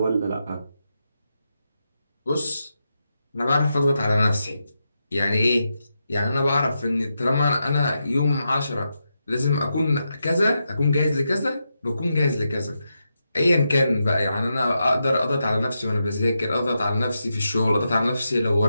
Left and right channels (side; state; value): both; inverted; correlation -0.86